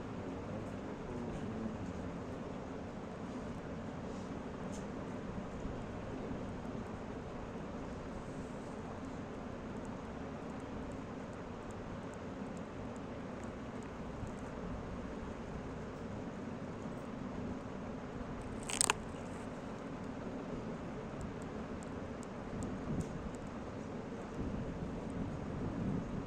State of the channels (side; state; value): both; identical; correlation 1.00